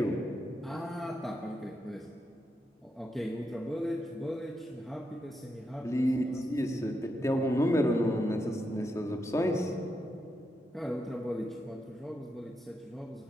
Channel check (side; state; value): both; normal; correlation 0.84